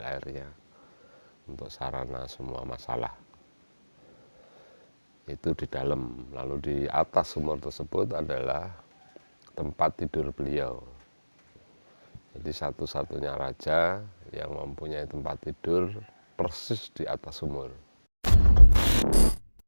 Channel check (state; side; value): inverted; both; correlation -1.00